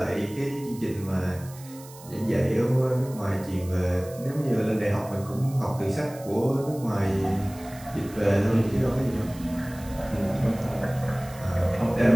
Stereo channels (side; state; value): right; noise; hiss, 20 dB below the sound